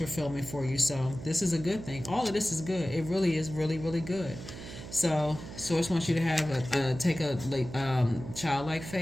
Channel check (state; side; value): noise; right; hum, 12 dB below the sound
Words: for you. So this is a good thing. All of this is good. It really is really, really good. So Source wants you to have take a childlike